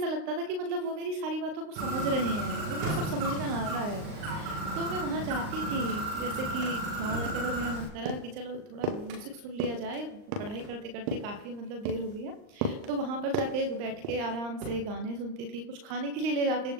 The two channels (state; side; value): late; left; 39 ms